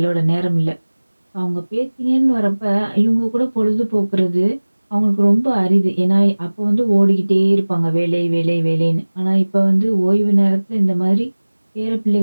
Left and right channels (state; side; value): inverted; both; correlation -1.00